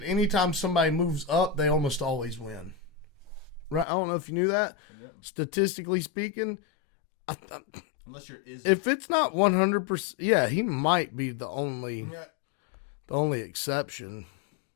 anytime somebody moves up, they almost always win. Right? I don't know if you knew that. Yeah. Statistically speaking, Unless you're Izzy. if it's not 100%, yeah, he might be the only exception,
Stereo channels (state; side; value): drops out; right; at 3.9 s